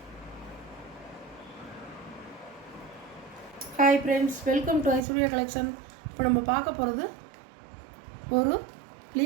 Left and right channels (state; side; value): drops out; left; at 5.1 s